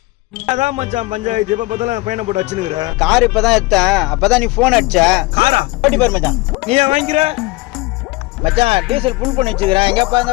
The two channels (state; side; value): quieter; right; 22.6 dB